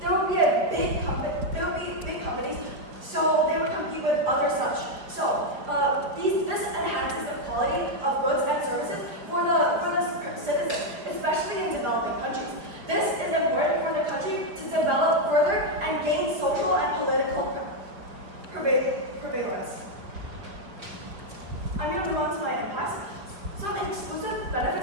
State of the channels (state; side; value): late; left; 4.8 ms